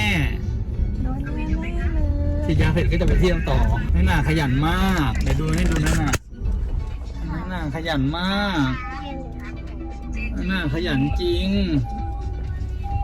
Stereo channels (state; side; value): identical; both; correlation 1.00